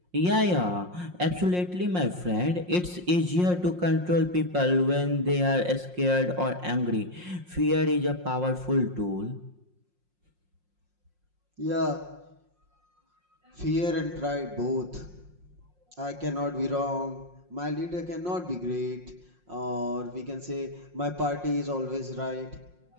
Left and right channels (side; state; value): left; late; 5.6 ms